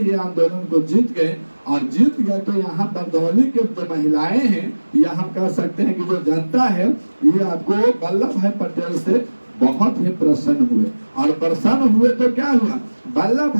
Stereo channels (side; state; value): both; inverted; correlation -1.00